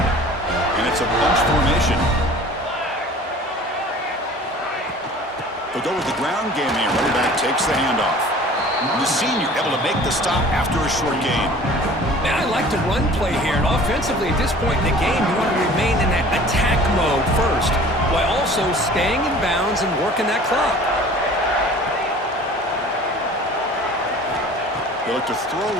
it. And it's a bunch formation. They'll go with the ground game here. Running back takes the handoff. The senior able to make the stop after a short gain. Man, I like the run play here. And offensively, at this point in the game, you want to remain in that attack mode first, while also staying in bounds and working that clock. They look to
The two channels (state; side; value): normal; both; correlation 0.46